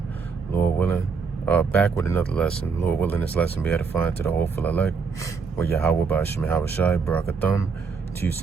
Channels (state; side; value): quieter; left; 5.3 dB